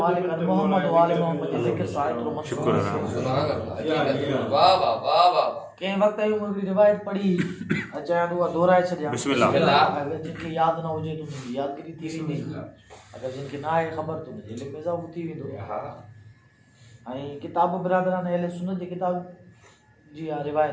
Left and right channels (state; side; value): identical; both; correlation 1.00